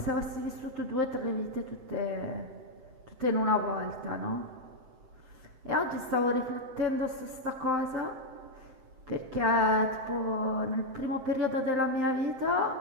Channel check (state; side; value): late; left; 7.7 ms